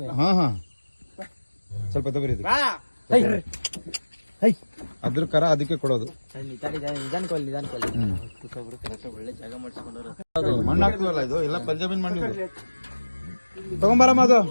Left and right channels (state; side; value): inverted; both; correlation -1.00